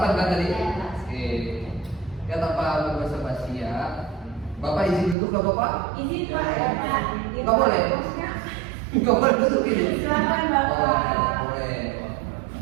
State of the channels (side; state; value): left; drops out; at 5.2 s